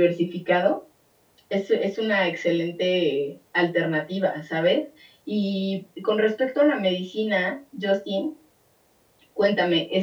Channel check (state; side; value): identical; both; correlation 1.00